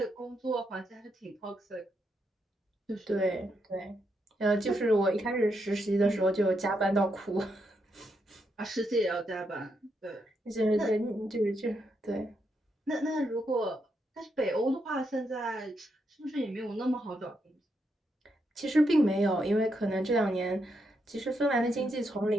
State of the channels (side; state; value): both; normal; correlation 0.81